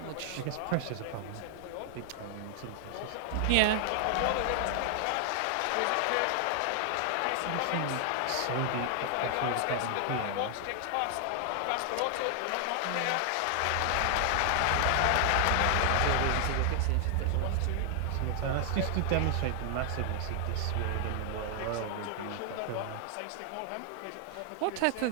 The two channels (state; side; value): different; both; correlation 0.00